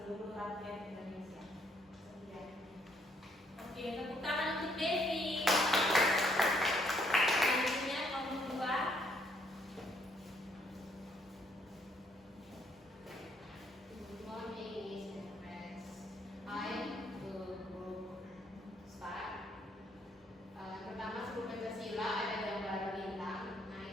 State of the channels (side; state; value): both; normal; correlation 0.69